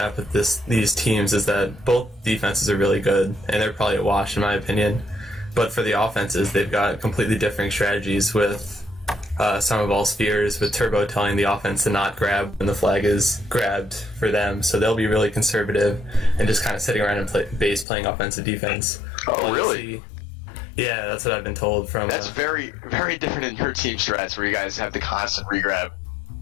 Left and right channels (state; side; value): drops out; right; at 17.9 s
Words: with these teams is that both defenses are really good, and they're probably a wash in my opinion. But for the offenses, they've got completely different strategies with Superball Spheres, with Turbo telling the offense to not grab when the flag is grabbed for them. So they'll be really conservative and just kind of sitting around in base playing offensive defense. Oh, really? Yeah, that's what I've been told from... That's very, very different in your team strats where you guys have the constant regrab.